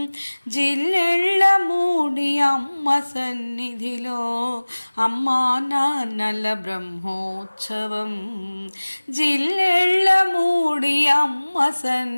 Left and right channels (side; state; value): both; inverted; correlation -1.00